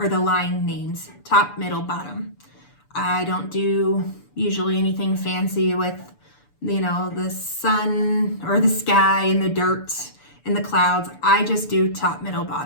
the line names, top, middle, bottom. I don't do usually anything fancy with, the sun or the sky and the dirt and the clouds. I just do top, middle,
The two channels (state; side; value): late; right; 6.9 ms